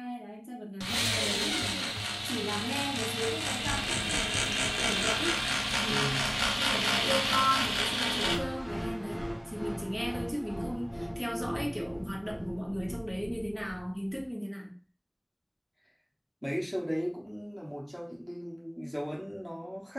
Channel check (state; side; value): identical; both; correlation 1.00